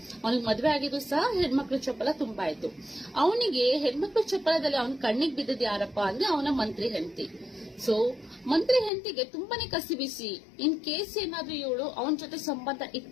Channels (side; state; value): right; drops out; at 8.9 s